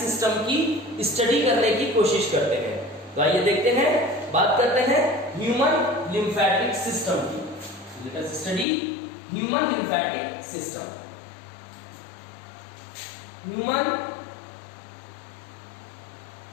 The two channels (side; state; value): right; drops out; at 8.7 s